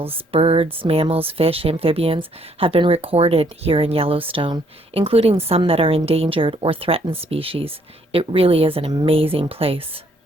birds, mammals, fish, amphibians have been recorded here in Yellowstone, including some that are endangered or threatened species. It really is an amazing place.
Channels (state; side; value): normal; both; correlation 0.67